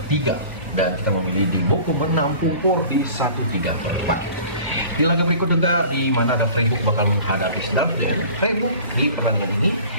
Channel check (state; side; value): inverted; both; correlation -0.44